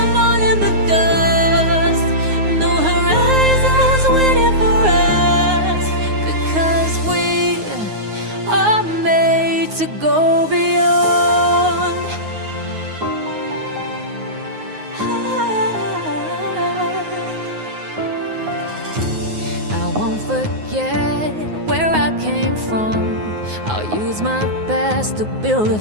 all in the dust. No horizons waiting for us, because we are made to go beyond. I won't forget where I came from. I'll use my best to build a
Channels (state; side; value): late; left; 9.5 ms